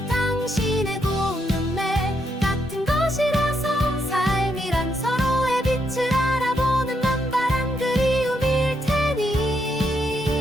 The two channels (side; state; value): both; normal; correlation 0.78